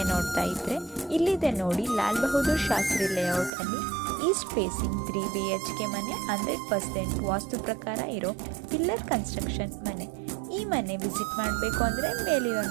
ನೋಡ್ತಾ ಇದ್ರೆ ಇಲ್ಲಿದೆ ನೋಡಿ ಲಾಲ್ ಬಹದ್ದೂರ್ ಶಾಸ್ತ್ರಿ ಲೇಔಟ್ ಅಲ್ಲಿ ಈಸ್ಟ್ ಫೇಸಿಂಗ್ 3 BHK ಮನೆ, 100% ವಾಸ್ತು ಪ್ರಕಾರ ಇರೋ ಪಿಲ್ಲರ್ ಕನ್ಸ್ಟ್ರಕ್ಷನ್ ಮನೆ. ಈ ಮನೆ ವಿಸಿಟ್ ಮಾಡಬೇಕು ಅಂದರೆ ಮೇಲಿರೋ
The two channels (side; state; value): left; drops out; at 3.5 s